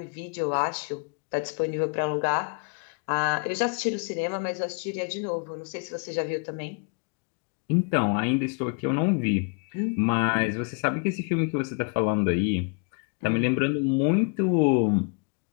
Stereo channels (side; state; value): right; quieter; 36.5 dB